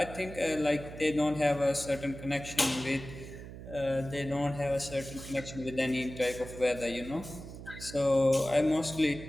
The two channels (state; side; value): noise; right; hum, 12 dB below the sound